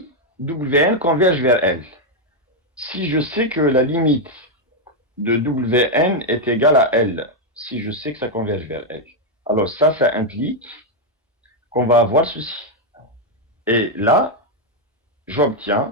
converge vers L, si je sais que la limite de Wn est égale à L, si je sais que ça converge vers L, alors ça implique qu'on va avoir ceci. Et là,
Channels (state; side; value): normal; both; correlation 0.01